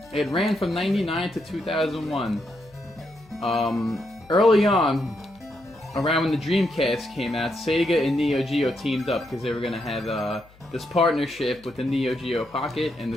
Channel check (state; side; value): noise; left; hum, 26 dB below the sound